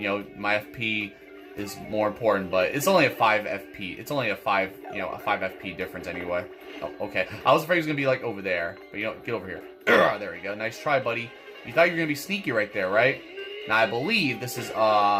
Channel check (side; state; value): both; identical; correlation 1.00